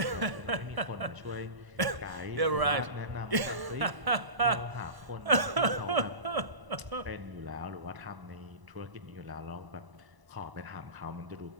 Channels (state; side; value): late; left; 1.0 ms